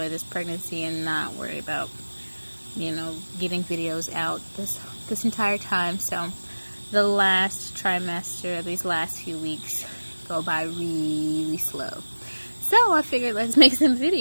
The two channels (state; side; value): inverted; both; correlation -1.00